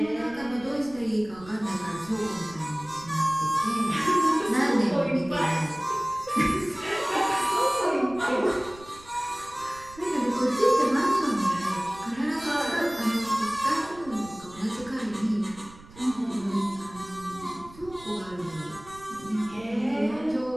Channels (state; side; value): noise; right; rumble, 20 dB below the sound